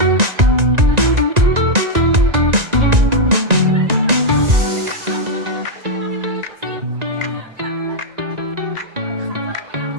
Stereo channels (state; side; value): late; left; 1.9 ms